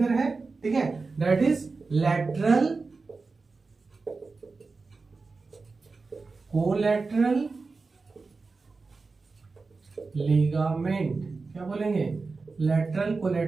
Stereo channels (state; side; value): quieter; left; 4.1 dB